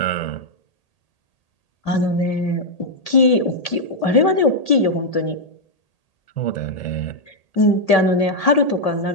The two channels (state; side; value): late; right; 1.8 ms